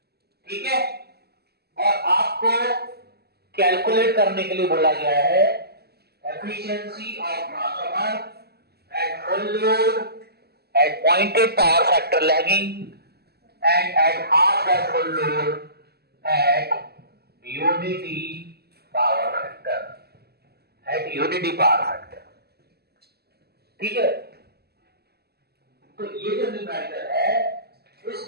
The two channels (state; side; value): late; left; 0.46 ms